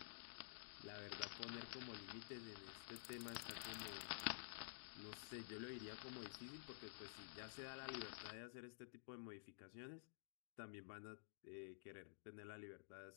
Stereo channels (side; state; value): right; silent; digital silence